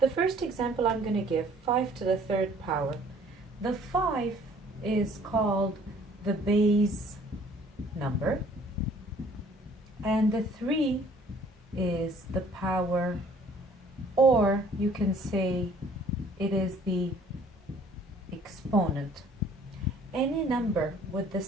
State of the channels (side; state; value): both; normal; correlation 0.56